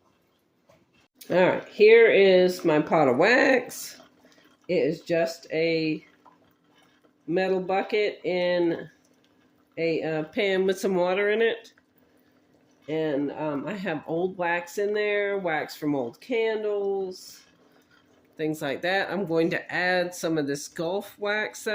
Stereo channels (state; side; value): identical; both; correlation 1.00